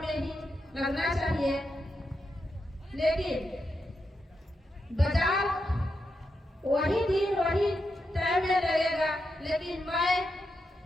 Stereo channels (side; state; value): both; normal; correlation 0.85